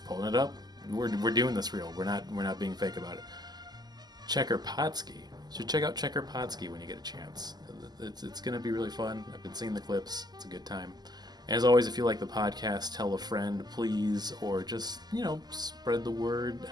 pulling it up. We're doing this real. We're not being fake about it. Checkeroski. You should check out Checkeroski when you get a chance. It's going to be really fun. I've been seeing the clips. It's a good time. And as always, if you like the podcast, tell a friend, please, or just, spread the word,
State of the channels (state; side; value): late; left; 0.20 ms